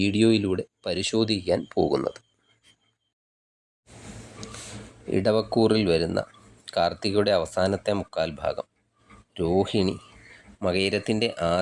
പരിശോധിക്കാൻ പോകുന്നത്. ഇടവക്കൂറിൽ വരുന്ന കാർത്തികയുടെ അവസാനത്തെ മുക്കാൽ ഭാഗം, രോഹിണി, മകയിരത്തിൻ്റെ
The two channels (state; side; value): identical; both; correlation 1.00